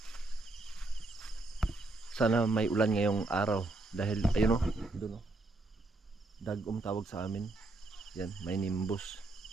Sana may ulan ngayong araw dahil ayun oh, doon oh. Dagom tawag sa amin. Yan, may nimbus.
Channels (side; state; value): left; quieter; 3.0 dB